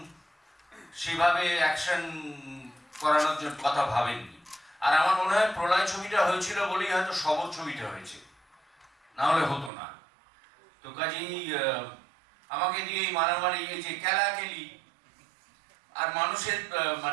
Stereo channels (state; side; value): drops out; left; at 9.7 s